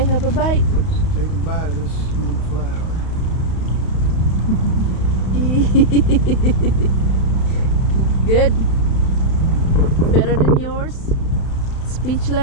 have a bite. let's take a bite of this mother flower. Good. Better than yours?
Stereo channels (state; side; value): late; right; 31 ms